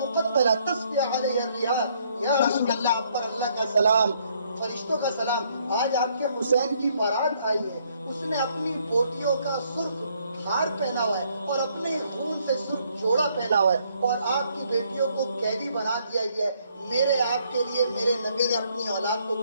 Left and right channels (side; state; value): both; inverted; correlation -0.69